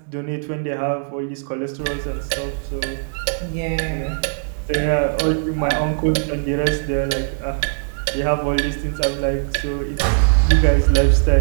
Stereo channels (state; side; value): silent; left; digital silence